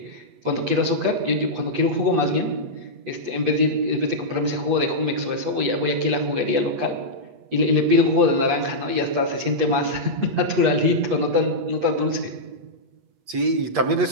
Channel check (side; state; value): left; late; 8.4 ms